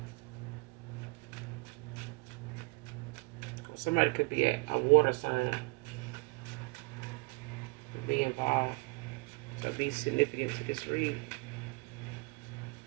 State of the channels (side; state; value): left; quieter; 27.6 dB